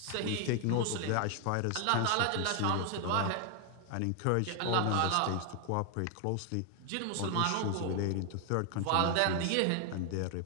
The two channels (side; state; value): both; different; correlation 0.01